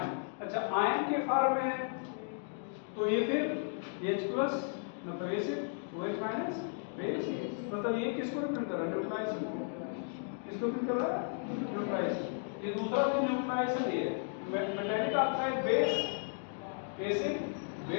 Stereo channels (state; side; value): silent; right; 55 dB below the other